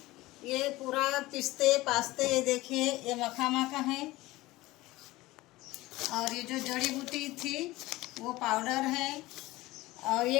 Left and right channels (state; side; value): quieter; right; 19.0 dB